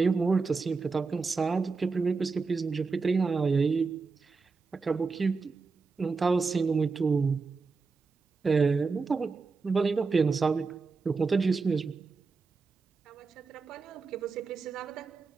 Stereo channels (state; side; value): quieter; left; 4.5 dB